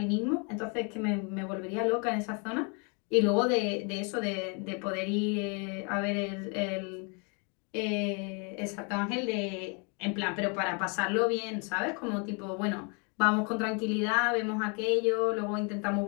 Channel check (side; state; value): right; quieter; 35.1 dB